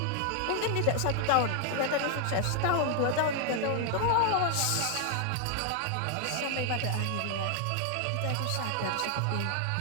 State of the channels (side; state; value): both; different; correlation 0.00